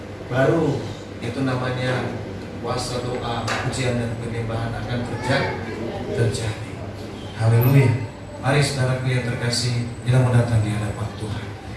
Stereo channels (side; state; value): both; identical; correlation 1.00